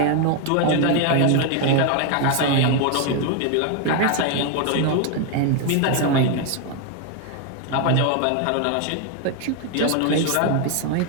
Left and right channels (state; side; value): different; both; correlation 0.01